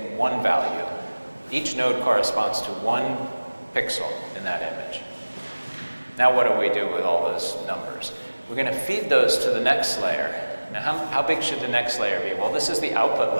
one value. Each node corresponds to one pixel in that image. Now what do we do with all those numbers? We're going to feed those to the next layer. Now how big should the next layer be? Well, this is the output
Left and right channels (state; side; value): inverted; both; correlation -1.00